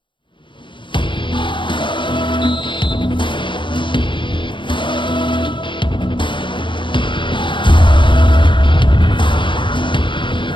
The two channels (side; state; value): right; late; 0.23 ms